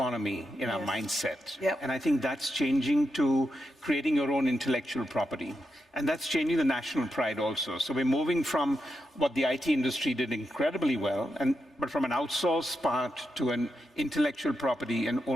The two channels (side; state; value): both; normal; correlation 0.86